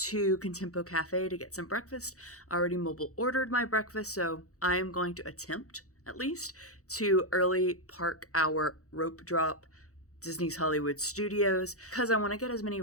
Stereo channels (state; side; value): late; right; 0.65 ms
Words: Contempo Cafe to get some breakfast. I already mobile ordered my breakfast, so I am going to attempt at least to early park our rope drop Disney's Hollywood Studios because I want to get as many